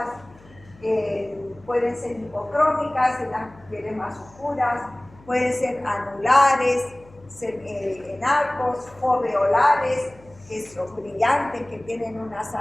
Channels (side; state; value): left; noise; hum, 25 dB below the sound